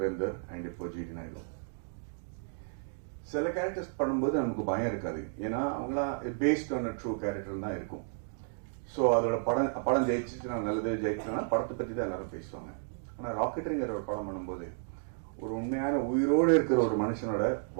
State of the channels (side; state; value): left; silent; digital silence